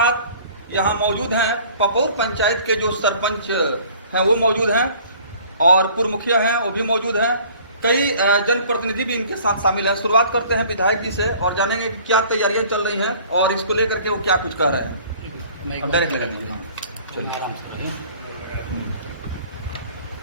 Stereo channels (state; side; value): inverted; both; correlation -0.51